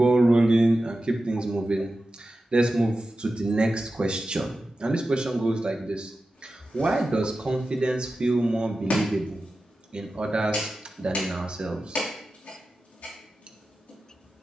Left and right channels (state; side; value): normal; both; correlation 0.93